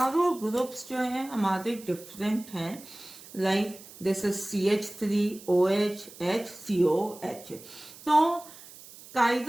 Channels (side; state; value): right; noise; hiss, 18 dB below the sound